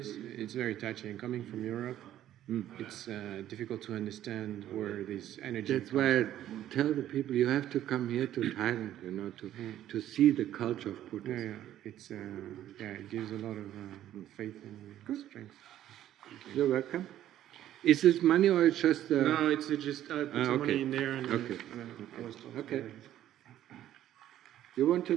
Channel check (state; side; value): quieter; left; 12.3 dB